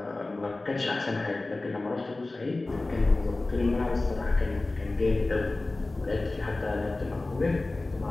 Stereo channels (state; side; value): quieter; right; 3.1 dB